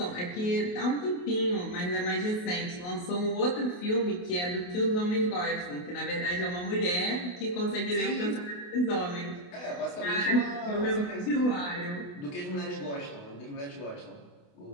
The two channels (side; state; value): right; late; 28 ms